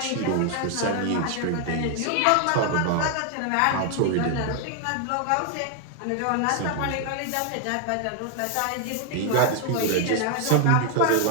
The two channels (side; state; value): both; different; correlation 0.00